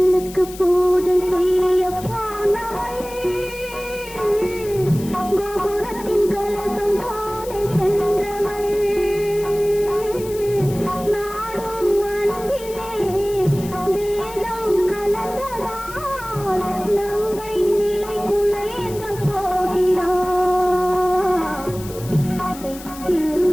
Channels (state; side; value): noise; left; hiss, 16 dB below the sound